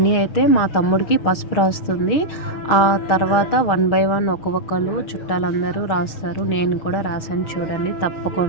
అయితే మా తమ్ముడికి పసుపు రాస్తుంది. ఆ తర్వాత 1 బై 1 ఒక్కొక్కరు చుట్టాలందరూ రాస్తారు. నేను కూడా రాశాను, చూడండి.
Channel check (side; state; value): right; late; 6.4 ms